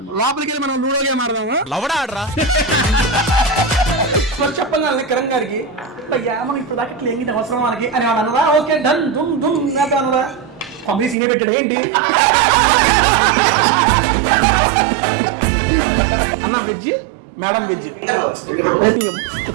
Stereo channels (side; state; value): left; drops out; at 11.2 s